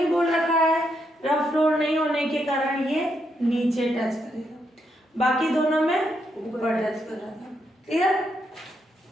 बोल रखा है। रफ फ्लोर नहीं होने के कारण ये नीचे टच करेगा, बाकी दोनों में ऊपर टच कर रहा था, क्लियर।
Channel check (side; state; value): both; normal; correlation 0.79